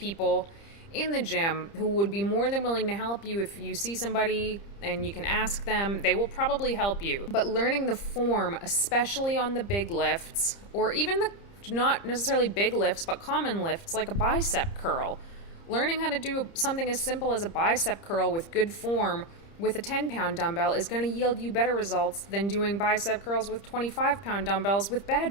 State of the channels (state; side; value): late; right; 30 ms